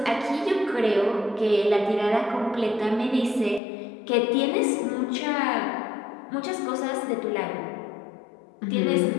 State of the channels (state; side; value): drops out; right; at 3.6 s